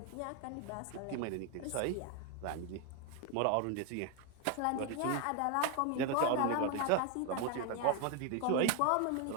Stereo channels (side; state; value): both; different; correlation 0.01